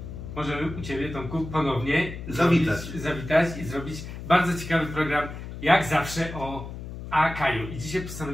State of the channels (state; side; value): noise; left; hum, 10 dB below the sound